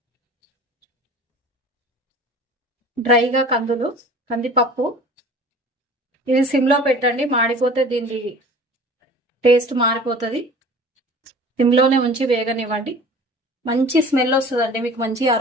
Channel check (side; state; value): both; normal; correlation 0.44